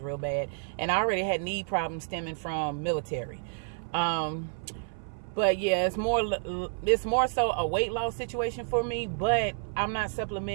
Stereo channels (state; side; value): silent; left; 56 dB below the other